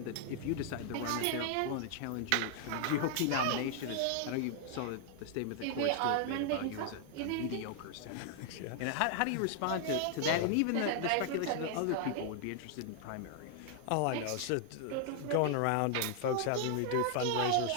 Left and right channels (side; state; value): both; different; correlation 0.00